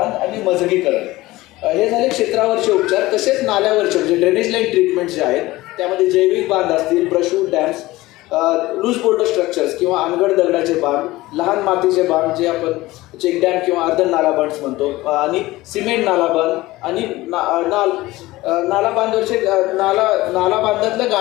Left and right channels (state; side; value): quieter; right; 18.6 dB